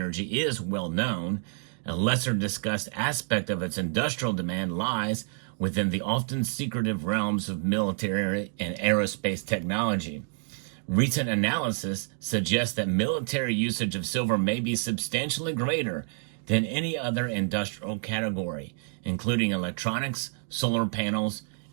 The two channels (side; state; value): left; silent; 59 dB below the other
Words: is well known. A lesser discussed aspect of its industrial demand lies within the often secretive realms of military and aerospace technology. Recent analysis suggests that military usage of silver may be substantially greater than any other industrial category, including electronics, solar panels,